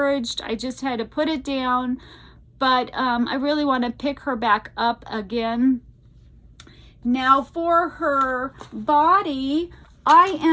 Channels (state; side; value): identical; both; correlation 1.00